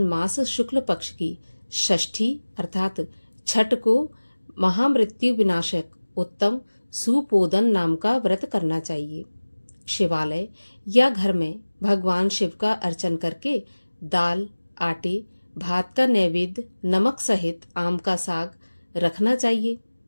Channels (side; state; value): both; inverted; correlation -1.00